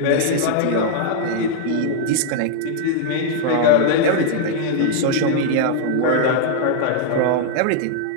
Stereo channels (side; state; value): both; different; correlation -0.01